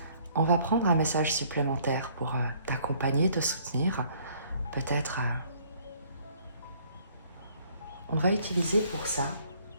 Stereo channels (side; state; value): both; inverted; correlation -0.61